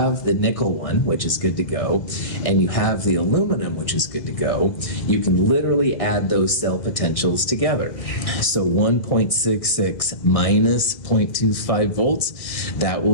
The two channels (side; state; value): right; late; 1.6 ms